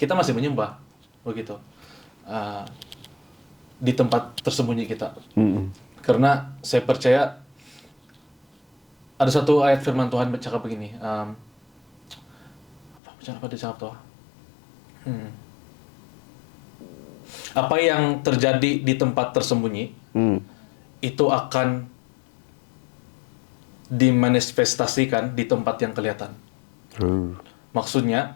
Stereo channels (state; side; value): drops out; right; at 13.0 s